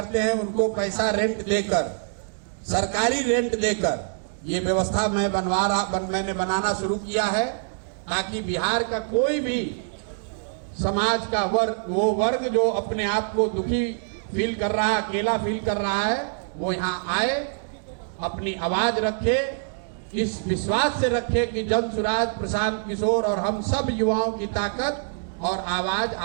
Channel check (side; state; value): left; silent; digital silence